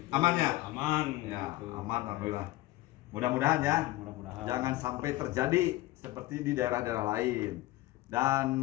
Amannya? Aman. Ya, gitu. aman alhamdulillah. Mudah-mudahan ya. Mudah-mudahan. Jangan sampai terjadi seperti di daerah-daerah lain.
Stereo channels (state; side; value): quieter; right; 17.4 dB